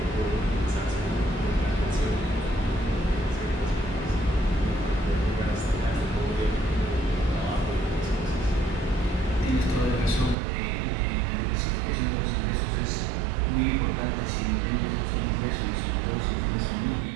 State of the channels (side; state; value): left; drops out; at 10.4 s